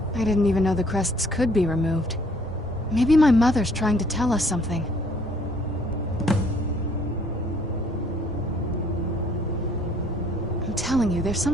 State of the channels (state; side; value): normal; both; correlation 0.61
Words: I didn't even know the crests could be removed. Maybe my mother's trying to tell us something. I'm telling you, there's